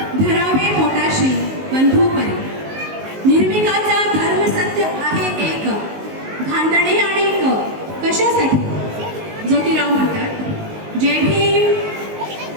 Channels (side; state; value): left; late; 19 ms